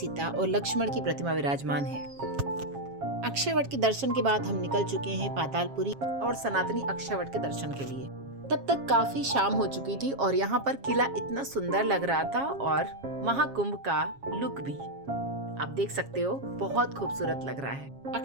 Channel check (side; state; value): left; late; 7.3 ms